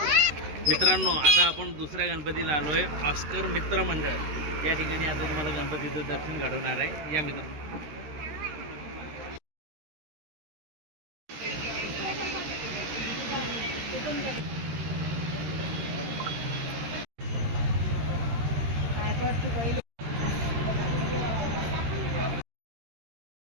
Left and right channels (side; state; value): left; late; 13 ms